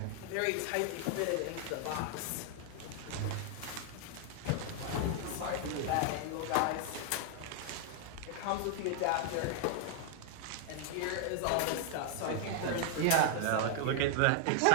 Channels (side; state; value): both; different; correlation 0.00